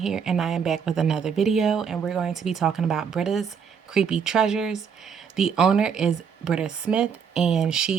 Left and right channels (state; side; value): quieter; left; 6.8 dB